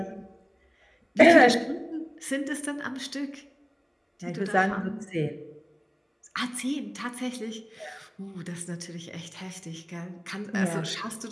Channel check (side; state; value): both; identical; correlation 1.00